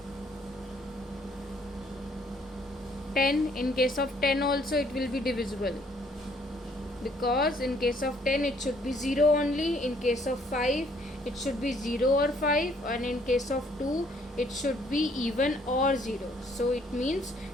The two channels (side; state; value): both; normal; correlation 0.64